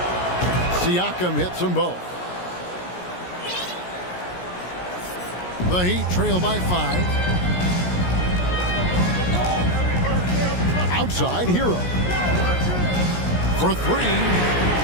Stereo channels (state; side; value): late; right; 17 ms